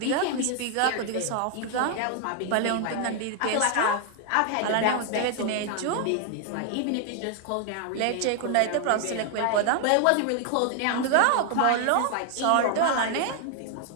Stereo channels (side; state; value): both; different; correlation 0.00